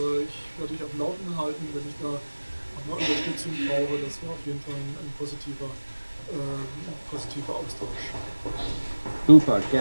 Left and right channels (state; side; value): inverted; both; correlation -1.00